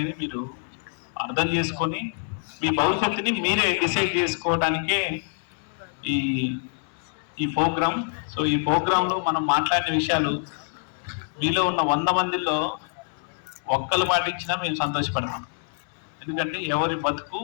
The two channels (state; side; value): silent; right; 59 dB below the other